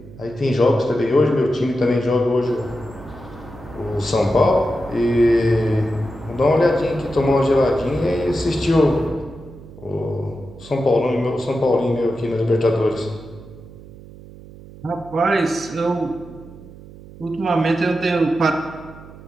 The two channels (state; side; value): noise; right; hum, 18 dB below the sound